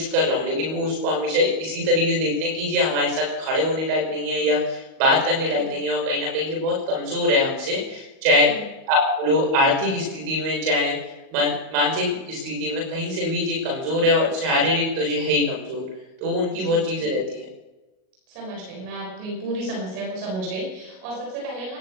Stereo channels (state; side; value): late; left; 38 ms